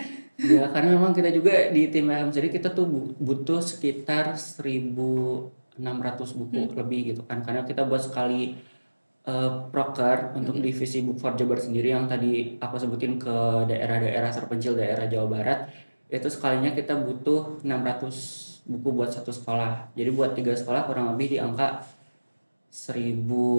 Ya, karena memang kita juga di tim LM sendiri kita tuh butuh sekitar 1.600 buku lebih gitu kan. Karena kita buat sekali proker untuk divisi Book for Jabar sendiri yang tadi aku sebutin ke daerah-daerah terpencil daerah Jawa Barat. Itu sekalinya kita butuh 600 buku buat satu sekolah. Jadi buat 3 sekolah kurang lebih di angka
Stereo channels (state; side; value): inverted; both; correlation -1.00